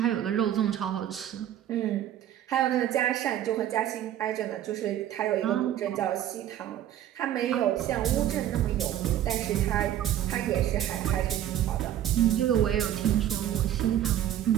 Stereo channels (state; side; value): quieter; left; 11.5 dB